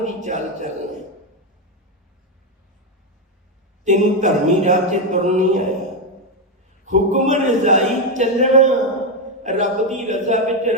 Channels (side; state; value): both; normal; correlation 0.06